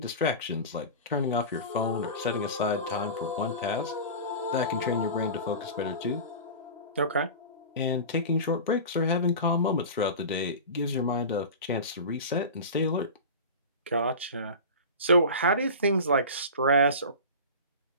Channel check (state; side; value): inverted; both; correlation -0.31